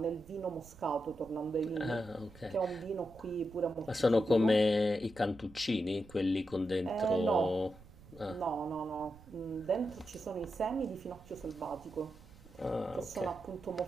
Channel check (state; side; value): noise; right; rumble, 21 dB below the sound